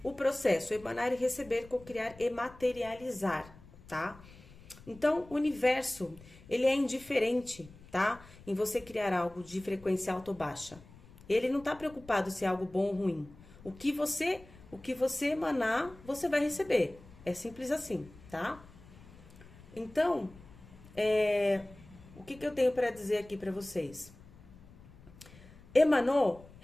o processo, emanar e receber, cocriar e materializar, tá? Então, o universo, ele é indiferente, tá? Em você criar algo de frequência alta ou baixa. Ele não tá preocupado se é algo bom ou ruim. O que você emanar, você vai receber. É simples assim, tá? Então, o que eu tenho para dizer aqui para vocês? Emanou,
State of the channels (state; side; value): noise; left; rumble, 21 dB below the sound